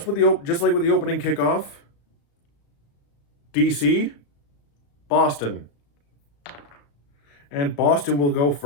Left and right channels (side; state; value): right; late; 35 ms